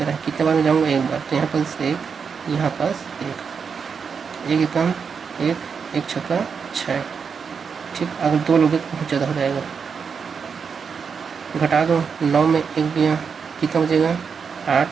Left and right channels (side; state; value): left; quieter; 6.1 dB